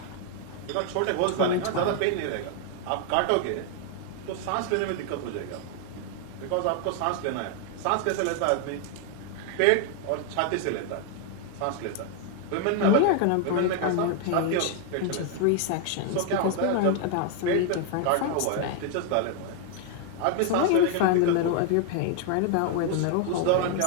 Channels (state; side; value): different; both; correlation 0.00